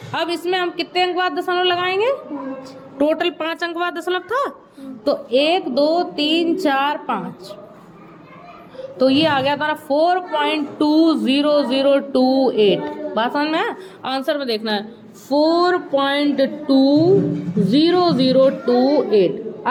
अब इसमें हम कितने अंक बाद दशमलव लगाएंगे? टोटल 5 अंक बाद दशमलव था, तो 1 2 3 4 5, तो ये आ गया हमारा 4.20028। बात समझ में है? आंसर में देखना है 4.20028।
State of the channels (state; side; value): identical; both; correlation 1.00